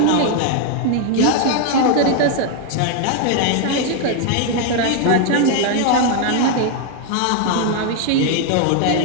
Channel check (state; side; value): different; both; correlation 0.00